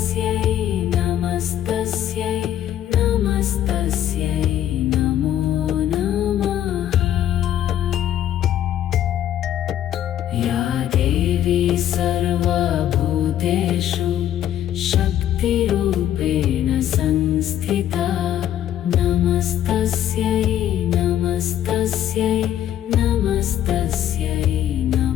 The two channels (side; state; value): right; quieter; 11.3 dB